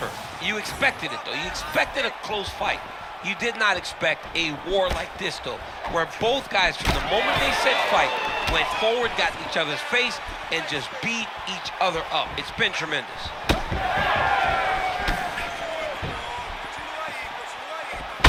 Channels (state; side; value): identical; both; correlation 1.00